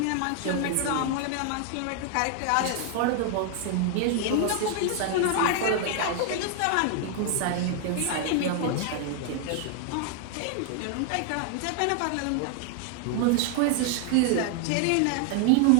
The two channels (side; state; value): both; different; correlation 0.00